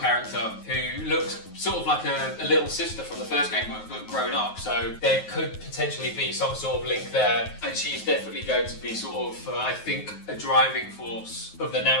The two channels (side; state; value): right; late; 9.4 ms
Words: who looks sort of like a little sister from the first game, but grown up, so there could potentially be some sort of link there, and she's definitely going to be sort of, I think, a driving force of the